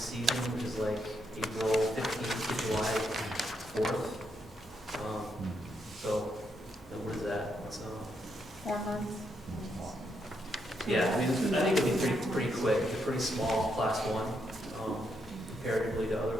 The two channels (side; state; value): both; normal; correlation 0.78